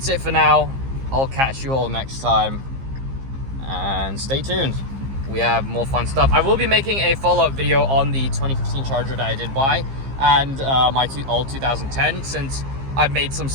it for now. I'll catch you all next time, and stay tuned. We have more fun stuff. I will be making a follow-up video on the 2015 Charger that I did buy and my old 2010, since I've made some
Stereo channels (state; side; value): late; left; 15 ms